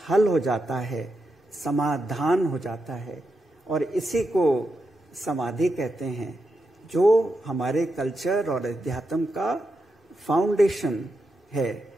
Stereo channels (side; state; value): both; normal; correlation 0.86